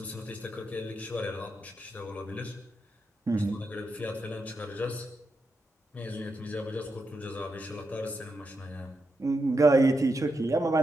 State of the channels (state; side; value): normal; both; correlation 0.85